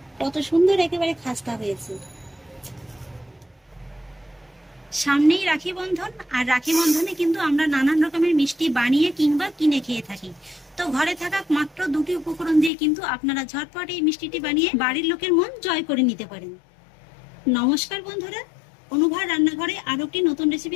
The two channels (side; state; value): right; drops out; at 12.7 s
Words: কত সুন্দর একেবারে খাস্তা হয়েছে। সামনেই রাখি বন্ধন, আর রাখি বন্ধনে কিন্তু আমরা নানান রকমের মিষ্টি বানিয়ে কিংবা কিনে খেয়ে থাকি। তো ঘরে থাকা মাত্র দুটি উপকরণ দিয়ে কিন্তু আপনারা ঝটপট এই মিষ্টিটি বানিয়ে বাড়ির লোকের মন জয় করে নিতে পারেন। নমস্কার বন্ধুরা, অনুভার রান্নাঘরে আরো একটি নতুন